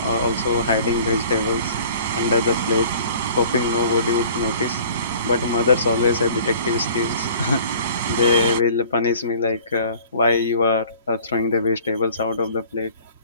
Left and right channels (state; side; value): inverted; both; correlation -0.50